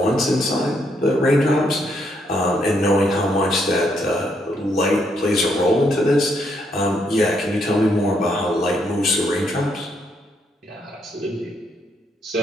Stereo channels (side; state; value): both; normal; correlation 0.75